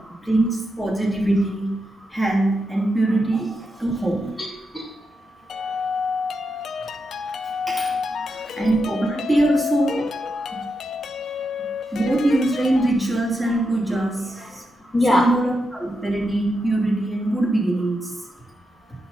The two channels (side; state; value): both; normal; correlation 0.85